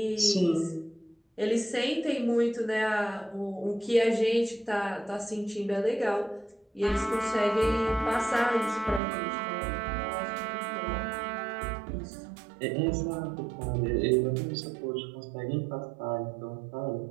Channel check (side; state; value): left; drops out; at 9.0 s